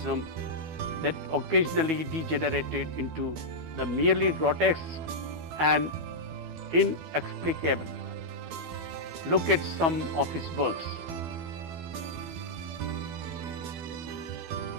that occasionally degenerated into the merely grotesque and inexplicable. Look at some of his works.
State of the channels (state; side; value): late; left; 12 ms